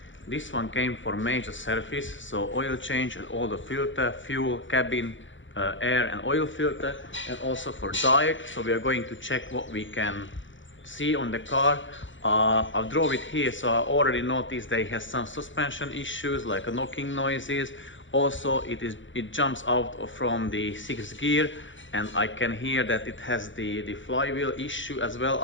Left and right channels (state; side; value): late; right; 0.55 ms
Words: This one came for major service, so oil change and all the filter, fuel, cabin, air and oil filter, and also for diet. So we are going to check what we can see on the car. I drove it here, so I already noticed that it has some suspension issues like knocking noises. Also, it jumps out from the 6th gear, and I can hear that it has the flywheel issue as well.